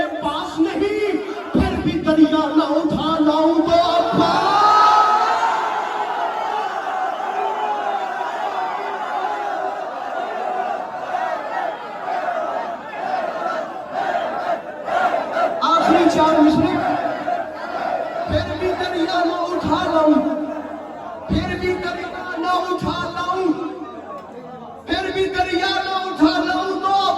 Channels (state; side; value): identical; both; correlation 1.00